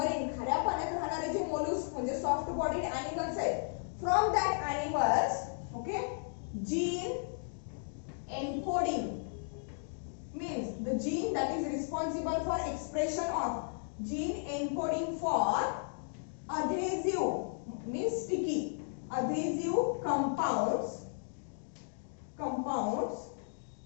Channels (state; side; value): silent; right; digital silence